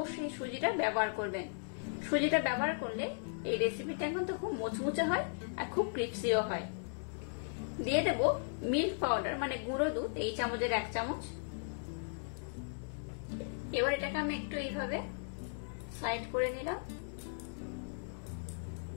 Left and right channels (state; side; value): silent; right; digital silence